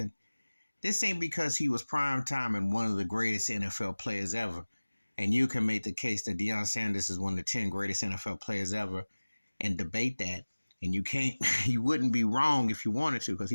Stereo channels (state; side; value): inverted; both; correlation -1.00